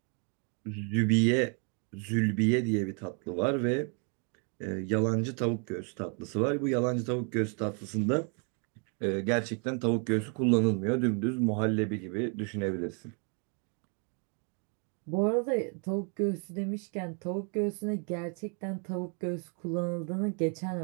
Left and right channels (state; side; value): quieter; left; 38.5 dB